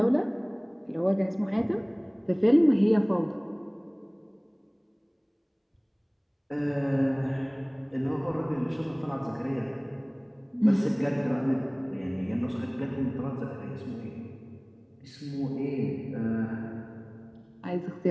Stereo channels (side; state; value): both; identical; correlation 1.00